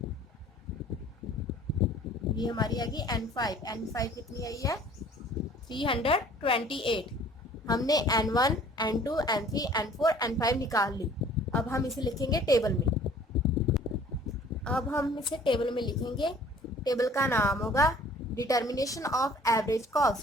ये हमारी आ गई N5 कितनी आई है, 328। हमने N1, N2, N3, N4, N5 निकाल ली। अब हम इसे लिखेंगे टेबल में, टेबल का नाम होगा डिटर्मिनेशन ऑफ एवरेज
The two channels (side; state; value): both; normal; correlation 0.52